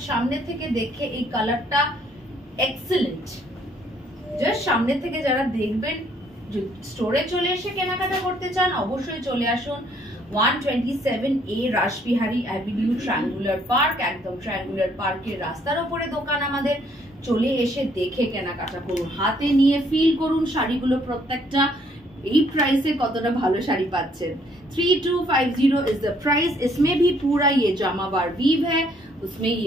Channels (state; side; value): normal; both; correlation 0.65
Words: সামনে থেকে দেখে এই কালারটা এক্সেলেন্ট। জাস্ট সামনে থেকে যারা দেখবেন, স্টোরে চলে এসে কেনাকাটা করতে চান অবশ্যই চলে আসুন 127A Rashbehari avenue, triangular park. একদম ট্রায়াঙ্গুলার পার্কের রাস্তার উপরে দোকান আমাদের। চলে এসে দেখে কেনাকাটা করুন, হাতে নিয়ে ফিল করুন শাড়িগুলো প্রত্যেকটা এই प्राइस কতটা ভালো শাড়ি পাচ্ছেন। 3250 इज द प्राइस। इसमें भी पूरा ये जामावार वीव है, उसमें